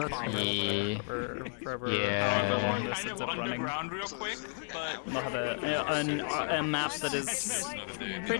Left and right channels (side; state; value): right; silent; 56 dB below the other